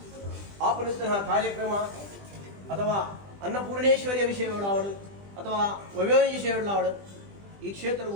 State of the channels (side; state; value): left; late; 20 ms